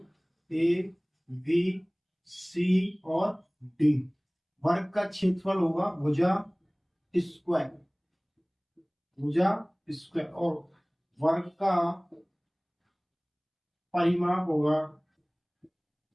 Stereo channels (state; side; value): identical; both; correlation 1.00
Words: ए बी सी और डी। वर्ग का क्षेत्रफल होगा भुजा स्क्वायर, भुजा स्क्वायर, और वर्ग का परिमाप होगा